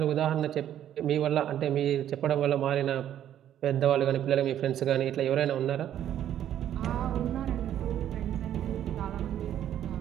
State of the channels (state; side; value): quieter; left; 10.9 dB